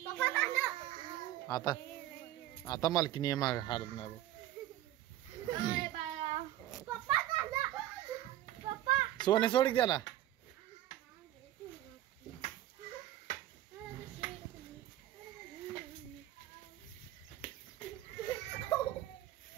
आता आता मालकीनी माग हालत नाही. सोने सोड त्याला.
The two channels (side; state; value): left; quieter; 13.9 dB